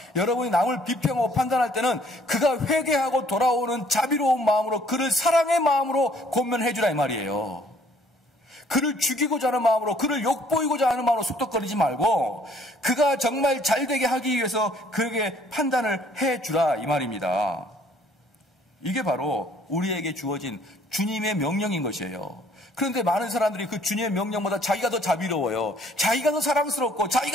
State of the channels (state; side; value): normal; both; correlation 0.60